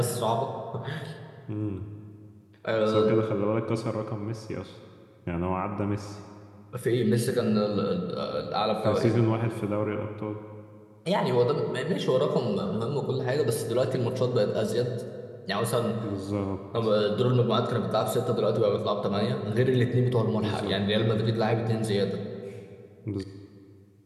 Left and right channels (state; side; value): identical; both; correlation 1.00